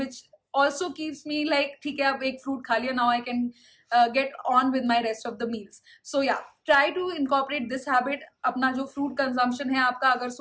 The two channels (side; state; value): both; identical; correlation 1.00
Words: also keeps me like ठीक है अब एक फ्रूट खा लिया, now I can get on with my rest of the meals. So yeah, try to incorporate this habit. अपना जो फ्रूट कंजम्पशन है आपका, अगर